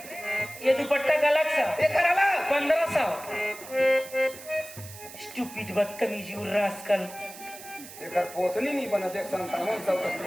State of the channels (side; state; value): right; noise; hiss, 15 dB below the sound